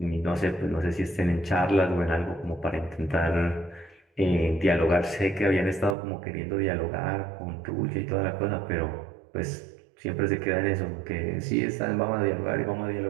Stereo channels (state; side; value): drops out; left; at 6.0 s